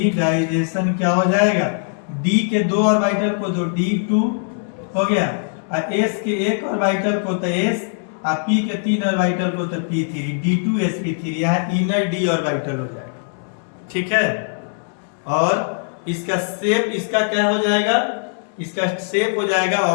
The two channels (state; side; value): silent; right; 65 dB below the other